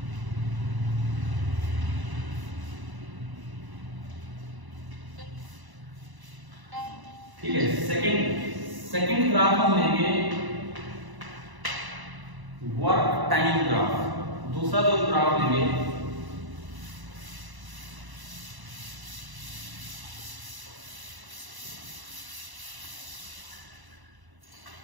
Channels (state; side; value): late; left; 1.0 ms